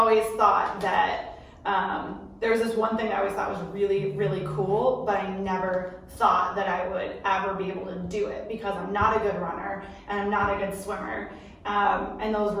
thought that there was this one thing I always thought was really, really cool, but I never thought that I would ever be able to do it because I'm not a good runner and I'm not a good swimmer. And those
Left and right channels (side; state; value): both; identical; correlation 1.00